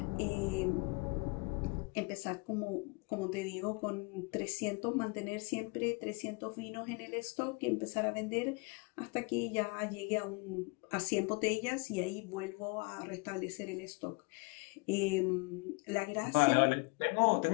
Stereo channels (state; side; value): quieter; right; 30.0 dB